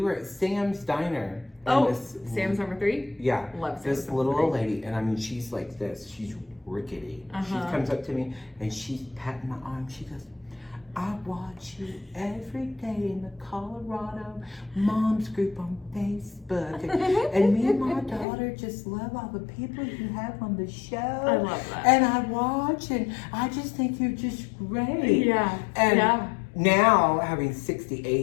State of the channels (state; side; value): drops out; right; at 18.2 s